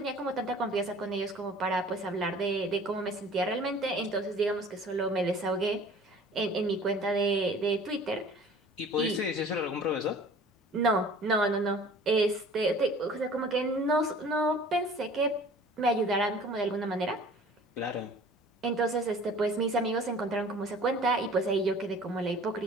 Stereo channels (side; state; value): both; normal; correlation 0.48